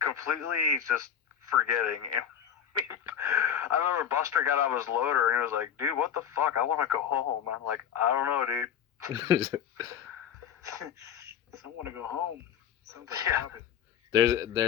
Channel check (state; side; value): quieter; right; 8.9 dB